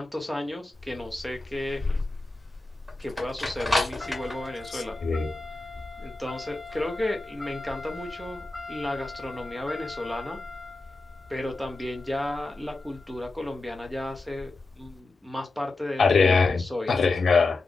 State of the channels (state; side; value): quieter; right; 3.3 dB